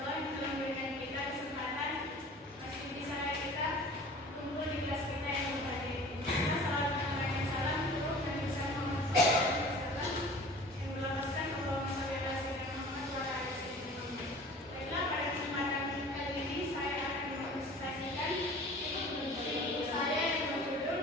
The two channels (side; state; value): both; normal; correlation 0.44